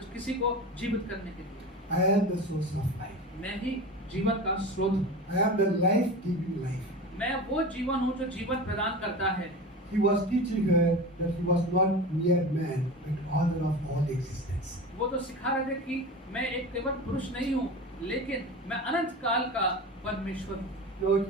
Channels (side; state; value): both; normal; correlation 0.30